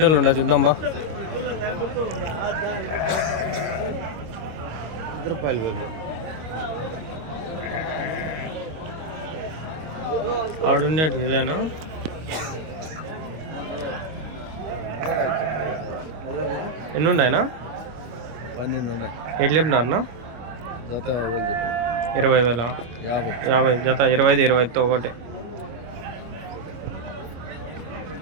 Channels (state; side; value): late; left; 25 ms